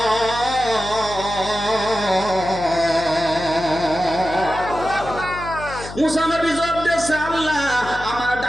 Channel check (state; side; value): noise; left; hum, 13 dB below the sound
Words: মূসা নবী জবাব দিচ্ছে, আল্লাহ, আমার